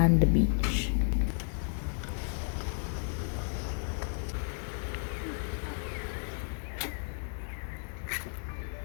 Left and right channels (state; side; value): silent; right; 56 dB below the other